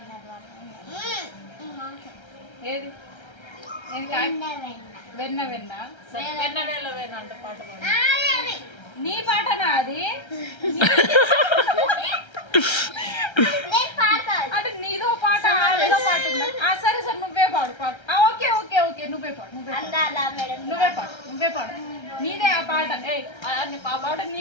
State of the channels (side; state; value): right; late; 1.3 ms